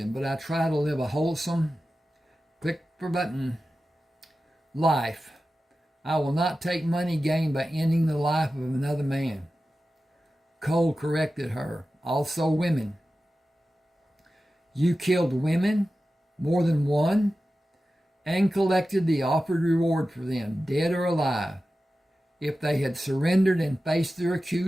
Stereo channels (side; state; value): both; normal; correlation 0.94